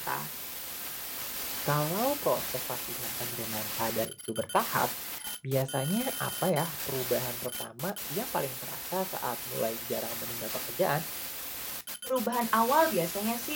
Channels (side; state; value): both; identical; correlation 1.00